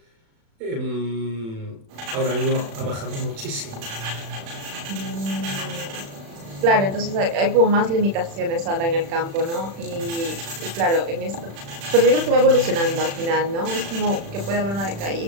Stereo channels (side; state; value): left; late; 36 ms